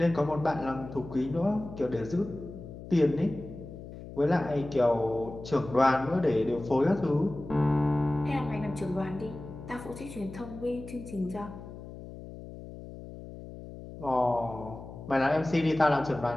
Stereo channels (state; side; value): noise; left; hum, 13 dB below the sound